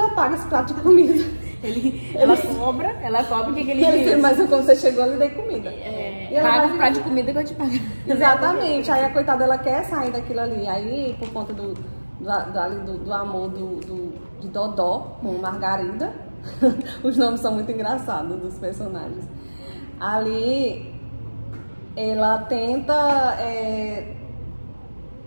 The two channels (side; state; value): both; inverted; correlation -1.00